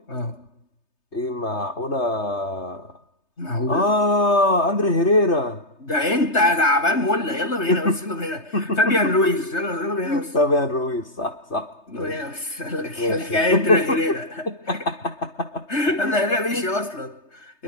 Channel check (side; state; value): right; late; 3.3 ms